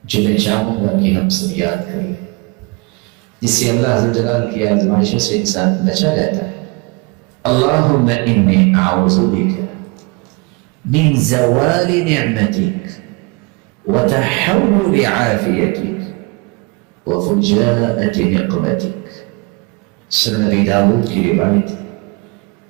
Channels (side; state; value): left; quieter; 27.0 dB